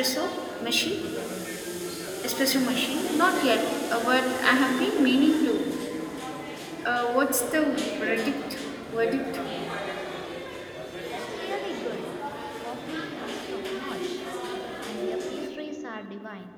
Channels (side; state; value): both; identical; correlation 1.00